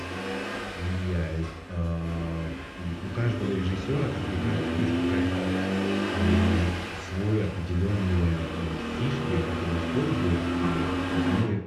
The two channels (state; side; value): identical; both; correlation 1.00